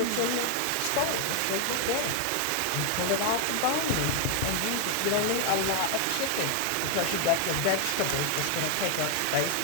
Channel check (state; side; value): different; both; correlation 0.00